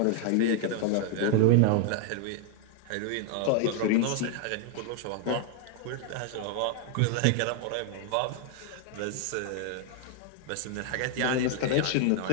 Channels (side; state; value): both; different; correlation 0.00